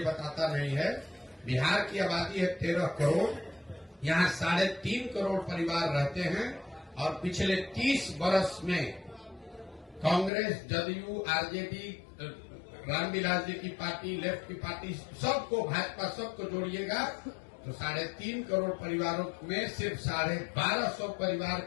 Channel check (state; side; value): drops out; right; at 10.3 s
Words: बताता नहीं है। बिहार की आबादी है 13 करोड़, यहाँ 3.5 करोड़ परिवार रहते हैं और पिछले 30 वर्ष में कांग्रेस, जदयू, आरजेडी, रामविलास जी की पार्टी, लेफ्ट की पार्टी, सबको, भाजपा, सबको जोड़िएगा तो 3.5 करोड़ परिवारों में सिर्फ 1250 परिवार